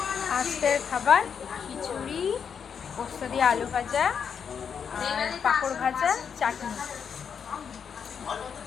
আজকের খাবার খিচুড়ি, পোস্ত দিয়ে আলু ভাজা আর পাঁপড় ভাজা, চাটনি।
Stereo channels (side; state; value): right; quieter; 7.0 dB